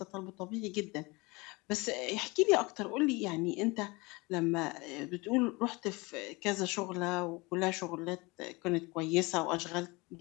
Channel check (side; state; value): right; quieter; 25.1 dB